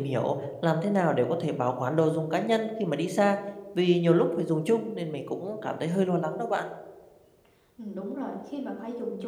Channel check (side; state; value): both; identical; correlation 1.00